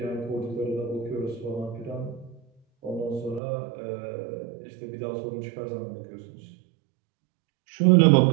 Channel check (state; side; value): drops out; left; at 3.4 s